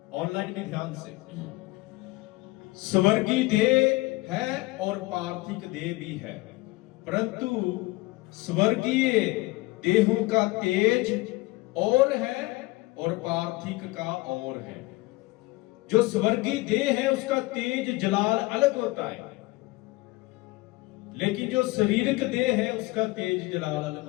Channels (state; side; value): quieter; right; 21.6 dB